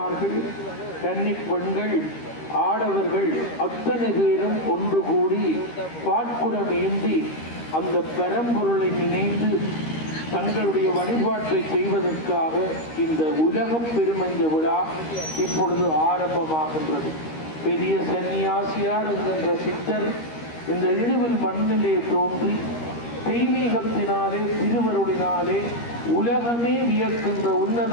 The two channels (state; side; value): late; right; 13 ms